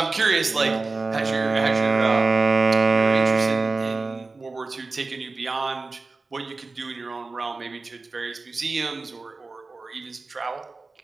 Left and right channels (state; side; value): quieter; left; 3.7 dB